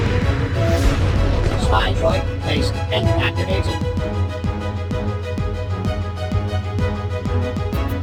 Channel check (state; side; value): identical; both; correlation 1.00